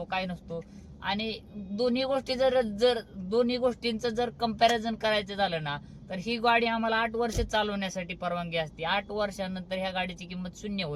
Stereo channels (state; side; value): identical; both; correlation 1.00